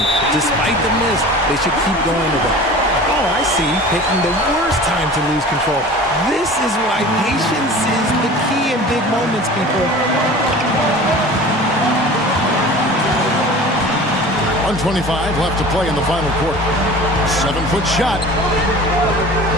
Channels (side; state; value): both; normal; correlation 0.40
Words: Despite the miss, they should keep going to them. Oh, I see. Picking the worst time to lose control. This is why patience is the key in big moments, people. 1:25 left to play in the final quarter. 7-foot shot.